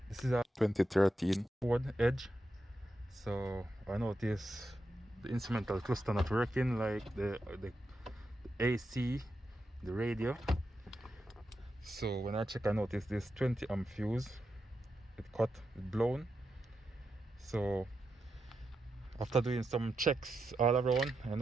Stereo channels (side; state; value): both; normal; correlation 0.87